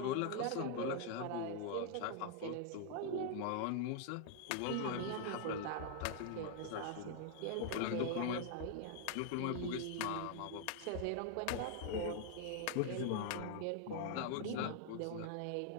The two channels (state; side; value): different; both; correlation 0.00